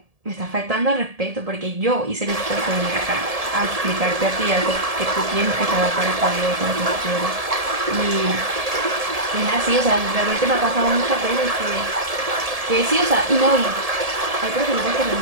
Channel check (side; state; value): left; late; 1.7 ms